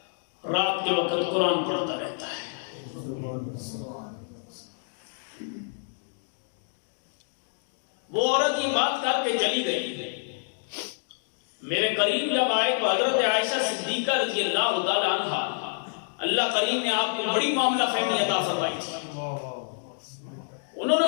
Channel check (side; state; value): right; silent; digital silence